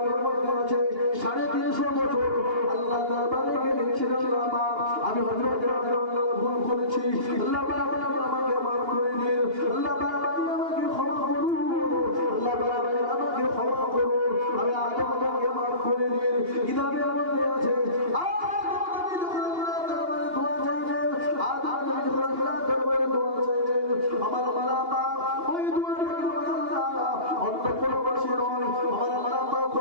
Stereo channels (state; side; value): late; left; 2.8 ms